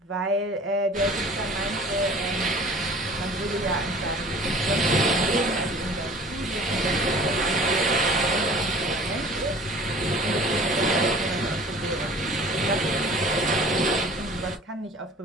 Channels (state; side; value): normal; both; correlation 0.47